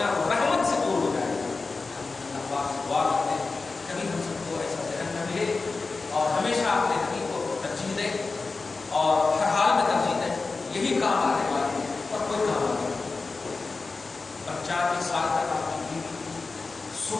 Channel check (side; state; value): right; quieter; 4.0 dB